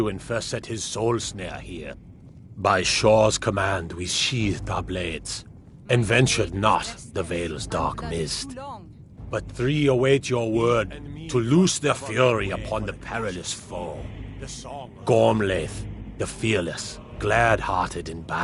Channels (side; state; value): both; identical; correlation 1.00